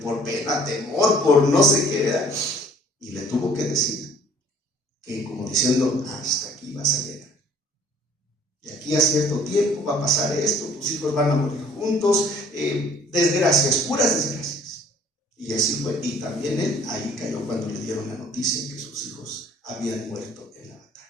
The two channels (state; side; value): normal; both; correlation 0.55